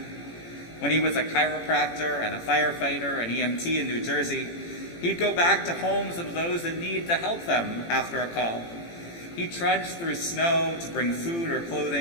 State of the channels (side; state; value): right; late; 18 ms